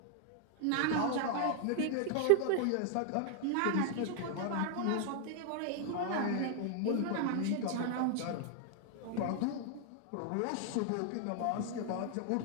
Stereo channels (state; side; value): different; both; correlation 0.00